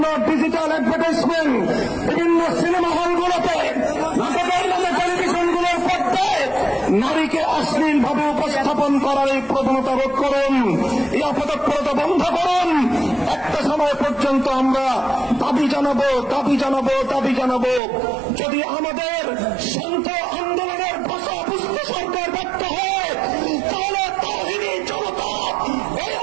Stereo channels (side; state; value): left; drops out; at 17.8 s